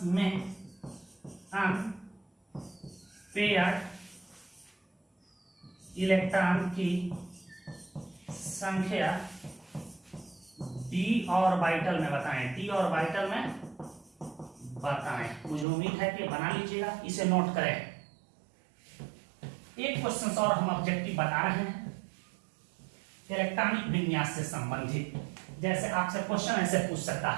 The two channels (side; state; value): left; drops out; at 15.7 s